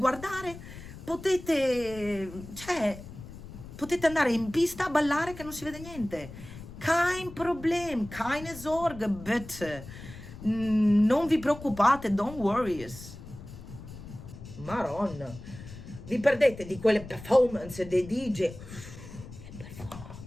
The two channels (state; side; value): noise; left; rumble, 14 dB below the sound